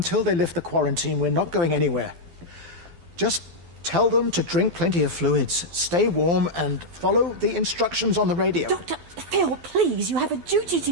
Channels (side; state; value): left; late; 12 ms